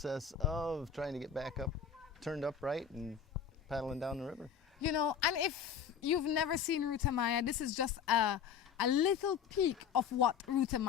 of trying to get back up, turned upright and paddling down the river. You know, and if you've never seen Ruta Maya, this is just a little peek of what Ruta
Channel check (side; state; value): right; quieter; 7.4 dB